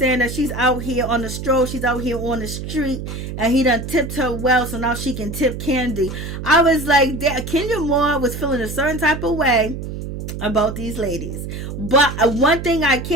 that she's out here on the stroll, she's out here on the street, and he done tipped her well, so now she can tip Kandi. I was like, Kenya Moore was feeling a certain type of way about these ladies. But one thing I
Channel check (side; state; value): right; noise; hum, 7 dB below the sound